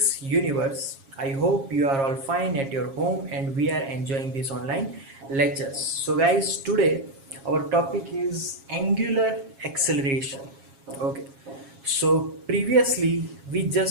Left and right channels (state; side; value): late; left; 7.3 ms